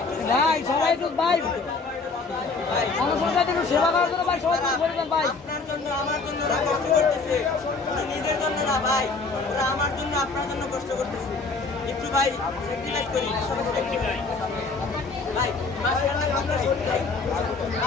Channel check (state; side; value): quieter; right; 4.1 dB